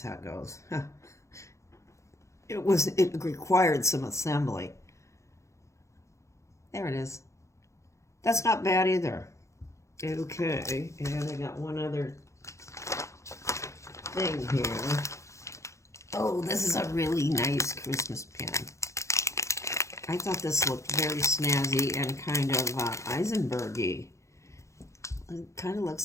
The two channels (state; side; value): late; right; 0.14 ms